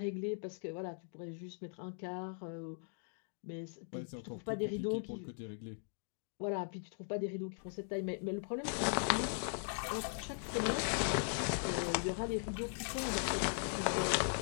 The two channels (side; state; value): right; silent; digital silence